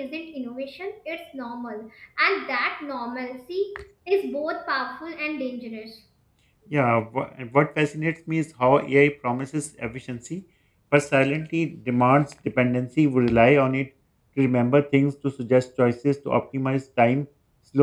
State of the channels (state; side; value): identical; both; correlation 1.00